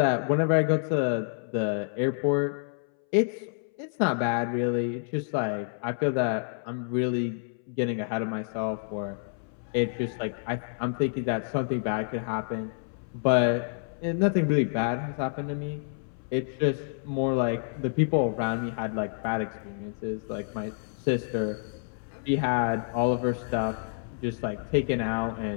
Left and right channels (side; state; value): right; silent; 59 dB below the other